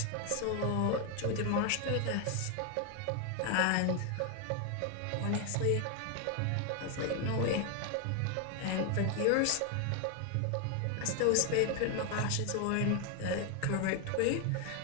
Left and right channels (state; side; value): different; both; correlation 0.01